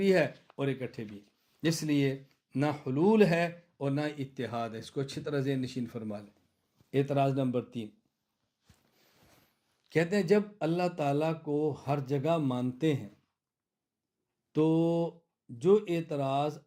ہے اور اکٹھے بھی. اس لیے نہ حلول ہے اور نہ اتحاد ہے. اس کو اچھی طرح ذہن نشین فرما لیں. اعتراض نمبر 3، کہتے ہیں جب اللہ تعالیٰ کو ہر جگہ مانتے ہیں تو جو اعتراض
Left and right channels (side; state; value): both; identical; correlation 1.00